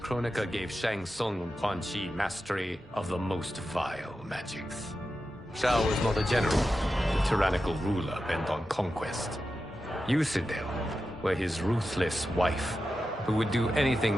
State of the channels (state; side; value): normal; both; correlation 0.91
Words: gave Shang Tsung and Quan Chi mastery of the most vile magics. Shao was not a general, a tyrannical ruler bent on conquest. Yusidel were his ruthless wife, who would do anything